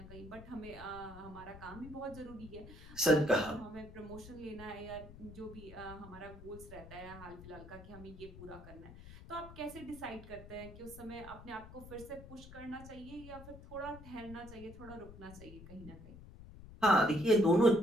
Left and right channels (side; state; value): left; noise; rumble, 15 dB below the sound